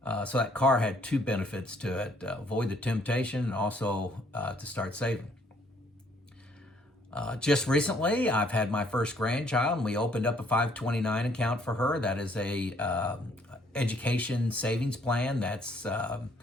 So that car had 2 benefits to it: avoid the temptation, and also to start saving. Just recently, I've had my first grandchild, and we opened up a 529 account for her. That is a education savings plan that's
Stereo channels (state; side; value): normal; both; correlation 0.64